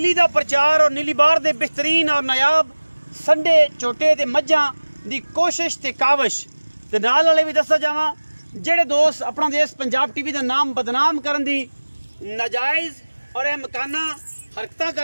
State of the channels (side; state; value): both; inverted; correlation -1.00